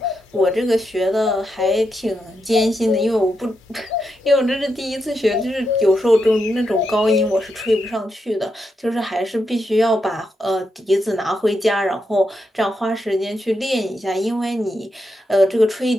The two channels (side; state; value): both; normal; correlation 0.84